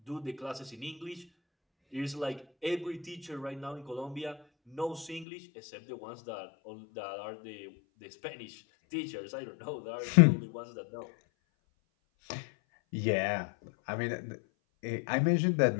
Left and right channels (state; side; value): drops out; right; at 5.2 s